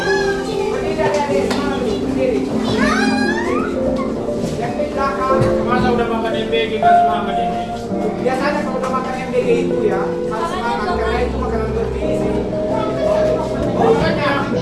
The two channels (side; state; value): both; identical; correlation 1.00